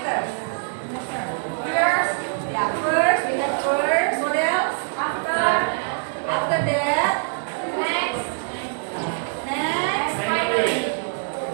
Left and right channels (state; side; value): silent; left; 63 dB below the other